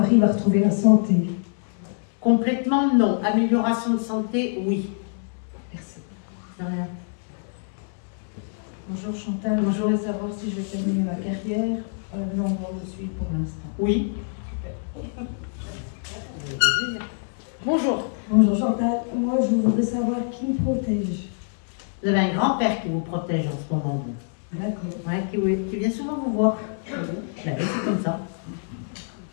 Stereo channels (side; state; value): right; silent; digital silence